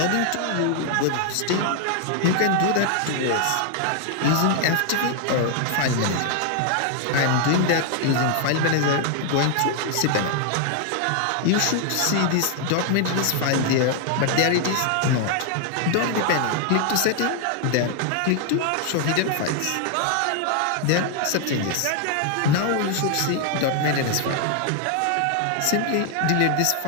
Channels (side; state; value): both; different; correlation 0.00